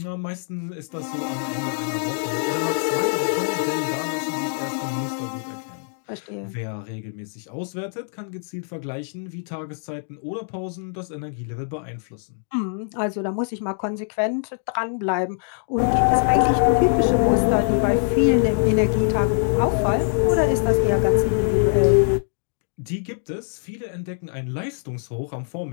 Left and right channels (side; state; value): right; silent; digital silence